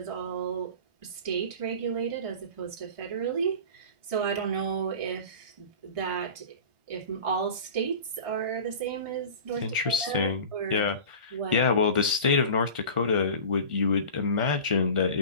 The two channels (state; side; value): late; left; 1.4 ms